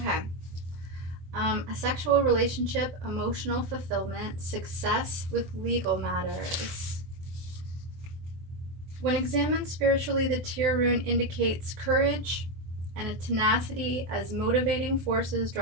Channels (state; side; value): late; left; 23 ms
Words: A sexual relationship, emotional fulfillment, success with legal matters. When examined spiritually, the Tyr rune indicates courage and a tenacity as motivating forces